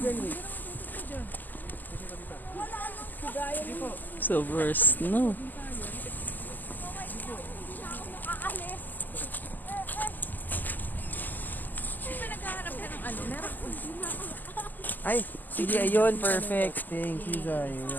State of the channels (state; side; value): late; right; 0.086 ms